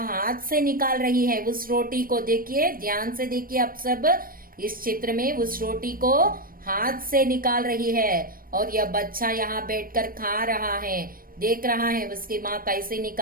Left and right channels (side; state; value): left; late; 0.41 ms